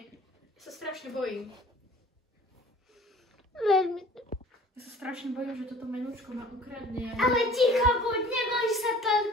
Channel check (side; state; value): both; normal; correlation 0.49